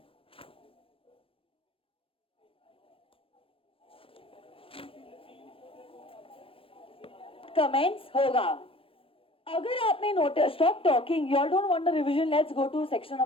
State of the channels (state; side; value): late; right; 0.26 ms